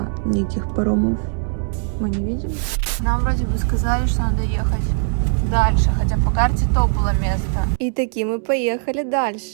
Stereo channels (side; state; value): left; silent; 55 dB below the other